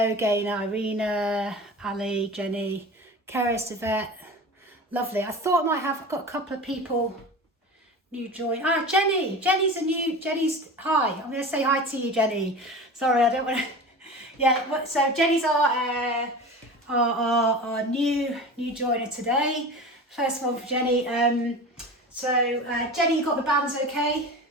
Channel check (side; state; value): both; normal; correlation 0.33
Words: Gaynor, Irina, Ali, Jenny, Keris, Yvette. Lovely. I thought I might have, I've got a couple of people new join. Ah, Jenny. Jenny's, hi. I'm going to say hi to you, Jenny. Sorry, I don't want to. Yeah, so Jenny's our new joiner today. First one for Jenny. Jenny, you got the bands okay?